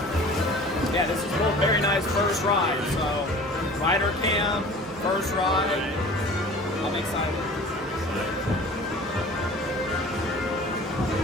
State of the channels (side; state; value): both; normal; correlation 0.43